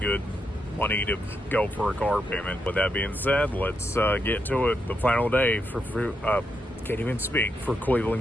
money to go for a car payment. With that being said, let's get to it. The final day for can't even speak, for Cleveland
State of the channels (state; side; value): normal; both; correlation 0.82